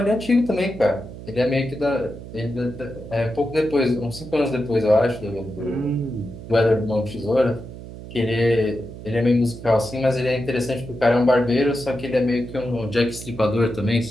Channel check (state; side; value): noise; right; hum, 13 dB below the sound